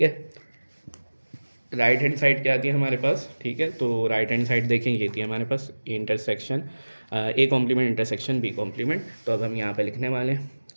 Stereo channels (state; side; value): inverted; both; correlation -1.00